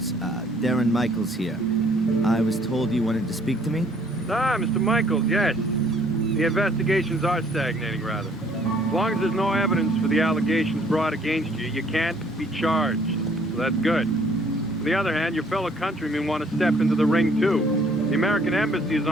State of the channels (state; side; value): normal; both; correlation 0.61